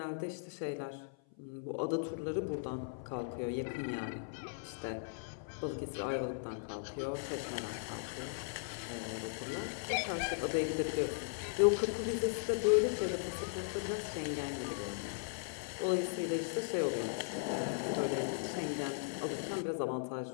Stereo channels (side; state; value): right; silent; 53 dB below the other